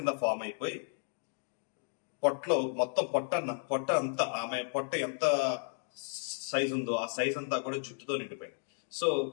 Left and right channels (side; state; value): right; silent; 55 dB below the other